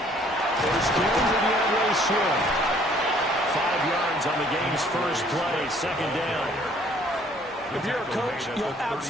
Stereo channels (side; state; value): both; normal; correlation 0.59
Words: First down to DeAndre Swift. 5 yards on the game's first play, second down. If you're a coach, you'll